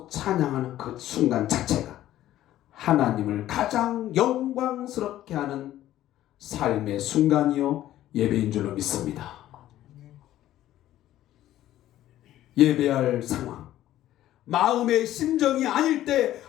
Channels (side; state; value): right; quieter; 13.5 dB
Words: 찬양하는 그 순간 자체가 하나님을 가장 영광스럽게 하는 삶의 순간이요 예배인 줄로 믿습니다. 예배할 상황, 마음의 심정이 아닐 때